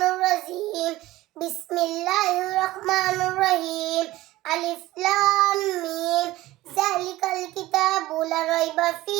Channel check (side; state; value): left; quieter; 17.2 dB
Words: الرجيم بسم الله الرحمن الرحيم ألف لام ميم ذلك الكتاب لا ريب